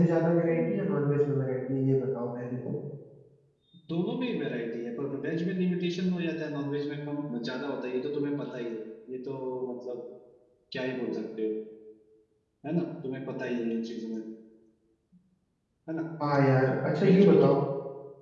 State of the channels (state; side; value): identical; both; correlation 1.00